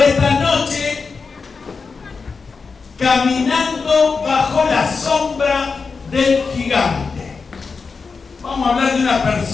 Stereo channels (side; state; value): right; quieter; 4.8 dB